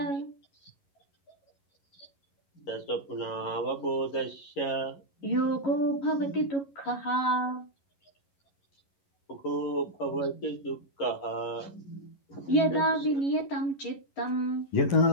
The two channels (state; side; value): late; right; 11 ms